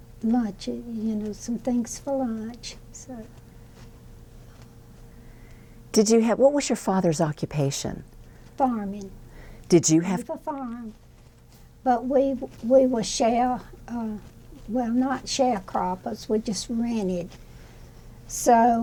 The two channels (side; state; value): both; identical; correlation 1.00